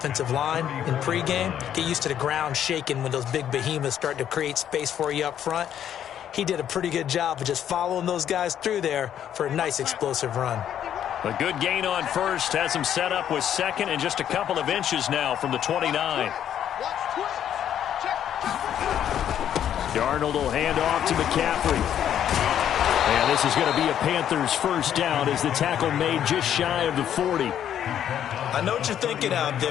line in pregame. Get used to the ground shaking when those big behemoths start to create space for you up front. He did a pretty good job of just following those guys through there for a nice explosive run. A good gain on first has him set up with second and just a couple of inches now from the 29. Darnold will hand off to McCaffrey. And this is going to be a Panthers first down as the tackle made just shy of the 40. I know what you're thinking out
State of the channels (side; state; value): right; quieter; 10.0 dB